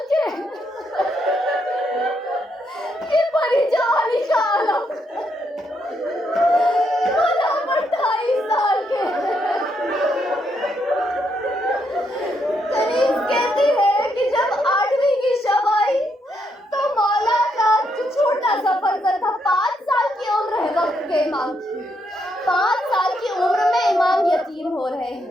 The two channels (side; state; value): both; normal; correlation 0.77